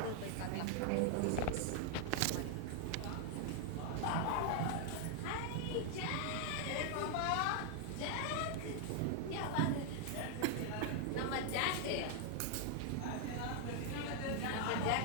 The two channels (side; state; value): both; different; correlation 0.00